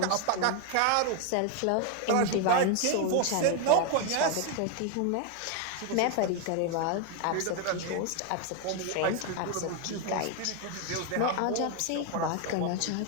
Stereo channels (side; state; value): both; different; correlation 0.01